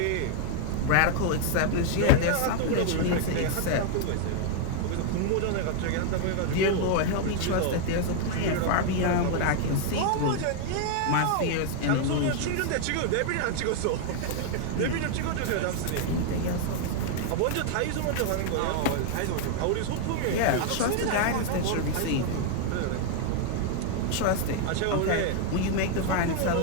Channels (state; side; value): different; both; correlation 0.00